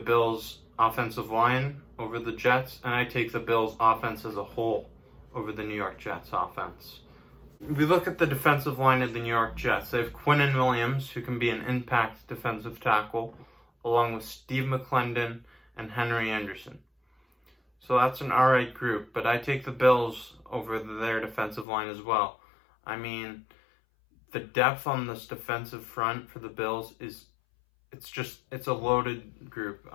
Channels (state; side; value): drops out; right; at 21.7 s